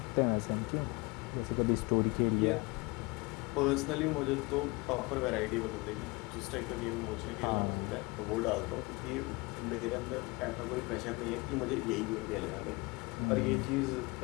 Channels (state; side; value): quieter; right; 25.7 dB